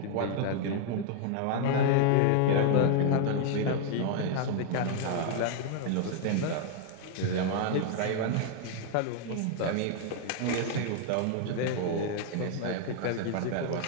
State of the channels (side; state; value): both; different; correlation 0.00